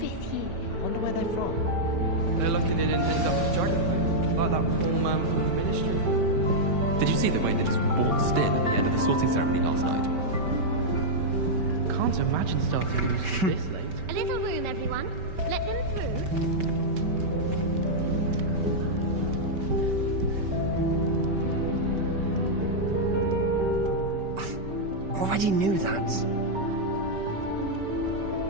year. Wonder where they're from. They're lucky they didn't end up as Dragonfang, like that poor man from the Ministry. Did you see the way they just waltzed in at the end of the sorting ceremony last night? Can't imagine starting this late. A little room, everyone. Let them through. Already knew that.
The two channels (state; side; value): late; left; 5.2 ms